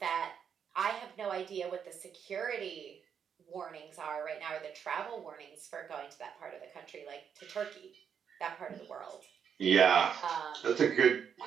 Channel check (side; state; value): left; quieter; 7.5 dB